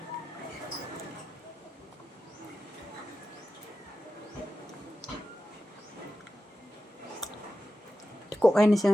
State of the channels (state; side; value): normal; both; correlation 0.92